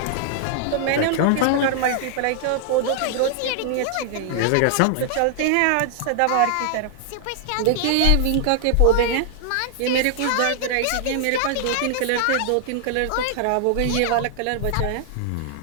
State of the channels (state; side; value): different; both; correlation 0.00